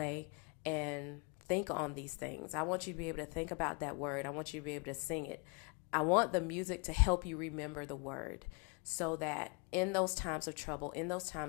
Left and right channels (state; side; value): quieter; right; 32.6 dB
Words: and think on these things. I want you to be able to think about that word. I want you to be able to sing it. I want the music to help you remember the word, so that in those times of trouble, in those